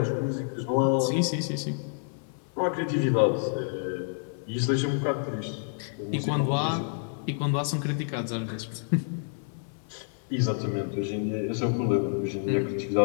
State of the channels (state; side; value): silent; right; 58 dB below the other